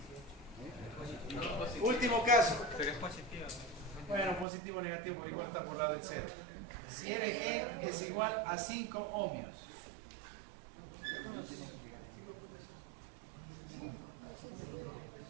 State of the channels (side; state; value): left; drops out; at 4.5 s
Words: Último caso. Pero es positiva. Bueno, positivo o negativo, igual está por lado del 0. Si RG es igual a 5 ohmios.